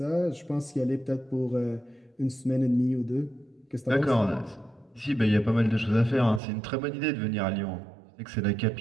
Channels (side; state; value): left; drops out; at 6.4 s